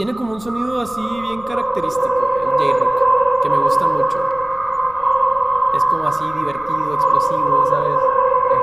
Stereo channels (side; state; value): left; noise; rumble, 21 dB below the sound